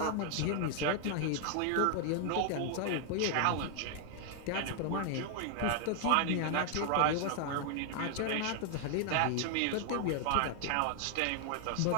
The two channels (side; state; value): both; different; correlation 0.00